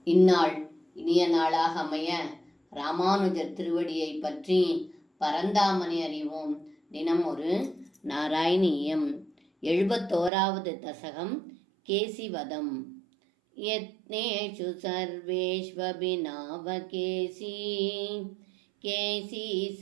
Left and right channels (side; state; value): left; drops out; at 10.3 s